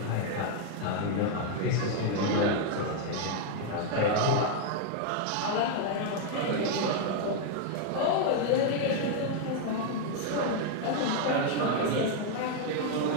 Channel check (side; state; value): both; different; correlation 0.00